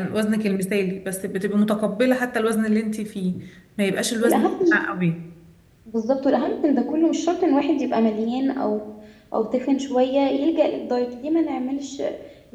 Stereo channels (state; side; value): identical; both; correlation 1.00